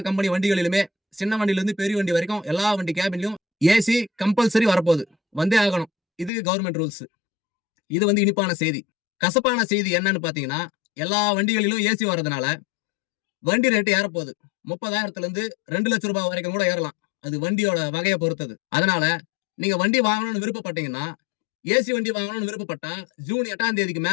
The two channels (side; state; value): right; drops out; at 6.3 s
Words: கம்பெனி வண்டிகளிலுமே சின்ன வண்டியில இருந்து பெரிய வண்டி வரைக்கும் எல்லா வண்டி கேபின்லயும் ஏசி கம்பல்சரி வரப்போகுது. வந்தே ஆகணும். இது கவர்மெண்ட் ரூல்ஸ். இது இனிப்பான செய்தி. கசப்பான செய்தி என்னன்னு பாத்தீங்கன்னா, எல்லா வண்டிகளிலும் ஏசி வர்றதுனால வண்டி ரேட்டு ஏறப்போகுது. 30,000 இருந்து 2 லட்சம் ரூபாய் வரைக்கும் கூட ஏறலாம். அது வண்டியோட வகையை பொறுத்தது. அதனால நீங்க வண்டி வாங்கணும்னு விருப்பப்பட்டீங்கன்னா, ஏசி வண்டி வாங்கணும்னு விருப்பப்பட்டா ஜூன் 8ஆம் தேதிக்கு